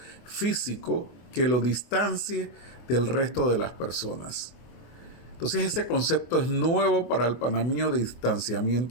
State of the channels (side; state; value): right; late; 24 ms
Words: físico que lo distancie del resto de las personas. Entonces ese concepto es nuevo para el panameño de